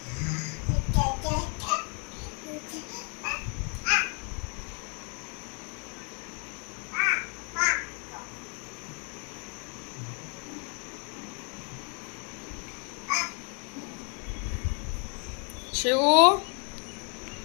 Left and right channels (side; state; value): right; quieter; 37.8 dB